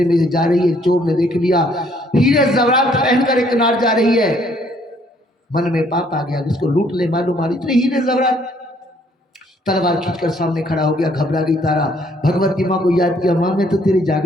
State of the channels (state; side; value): normal; both; correlation 0.65